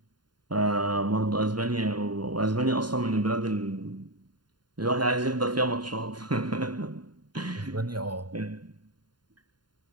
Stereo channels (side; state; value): left; late; 0.71 ms